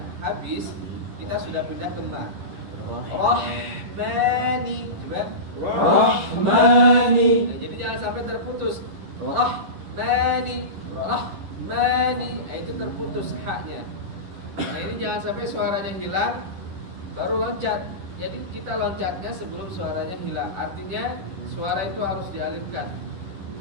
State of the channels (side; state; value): left; late; 11 ms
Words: habis, kita sudah pindah ke ma. Rahmani, coba. Rahmani. Nah, jadi jangan sampai terputus. Rahmani, Rahmani, itu terputus haknya. Nah ini jangan sampai suaranya hilang, baru loncat. Jadi kita loncatnya sebelum suaranya hilang. Artinya suara itu harus dialirkan.